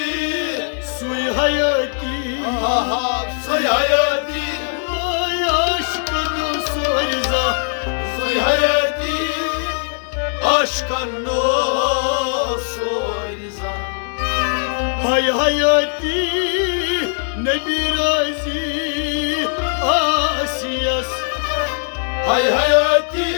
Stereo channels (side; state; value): right; silent; digital silence